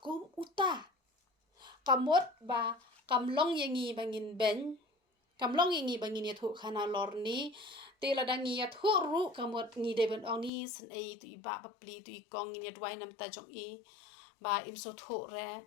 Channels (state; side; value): drops out; right; at 10.5 s